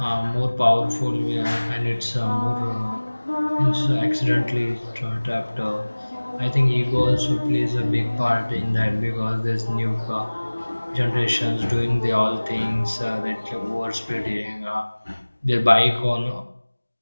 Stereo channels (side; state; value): both; inverted; correlation -1.00